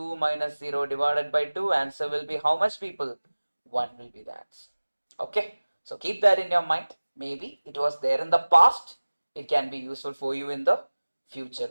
minus 0 divided by 2. Answer will be how much, people? 1 will be the answer. Okay. So keep that in your mind. Maybe it was there in the past. It can be useful for you in the future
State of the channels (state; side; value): inverted; both; correlation -1.00